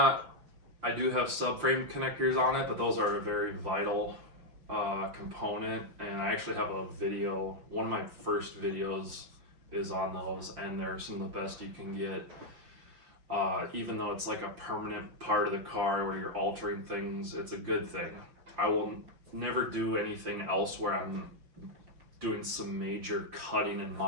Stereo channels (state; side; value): late; left; 5.8 ms